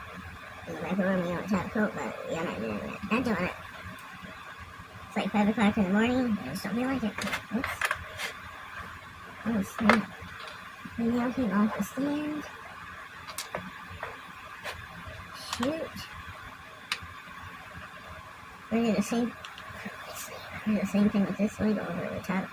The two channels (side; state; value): both; identical; correlation 1.00